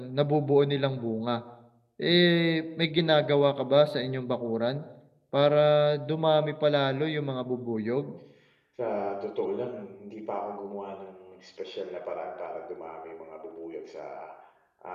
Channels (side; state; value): both; identical; correlation 1.00